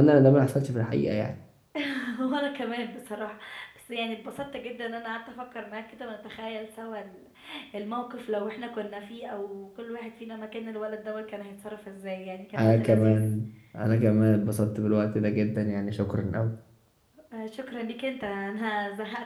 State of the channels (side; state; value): both; identical; correlation 1.00